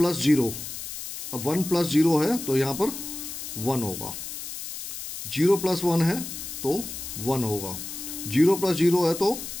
0, अब 1 + 0 है तो यहाँ पर 1 होगा। 0 + 1 है तो 1 होगा। 0 + 0 है तो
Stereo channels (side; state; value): left; noise; hiss, 8 dB below the sound